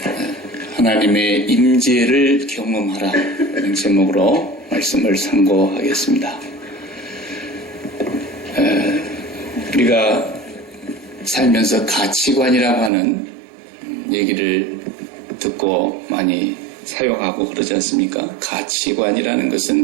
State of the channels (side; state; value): left; drops out; at 12.9 s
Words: 하나님의 임재를 경험하라 이런 제목으로 말씀을 상고하겠습니다. 우리가 살면서 가치관이라고 하는 얘기를 듣고 많이 사용하고 그러지 않습니까? 가치관이라는